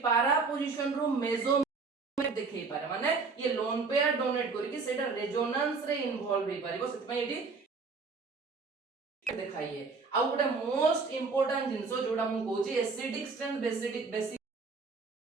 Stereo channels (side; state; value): left; quieter; 4.5 dB